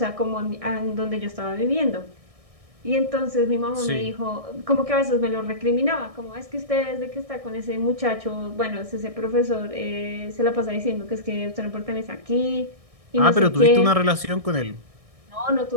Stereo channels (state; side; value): late; left; 1.6 ms